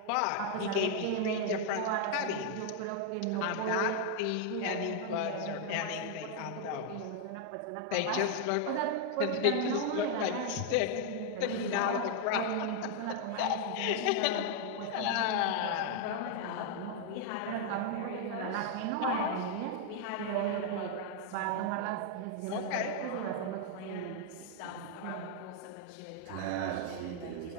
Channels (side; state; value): both; different; correlation 0.00